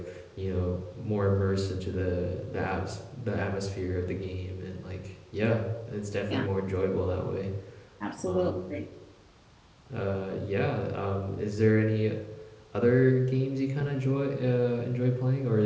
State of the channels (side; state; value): both; identical; correlation 1.00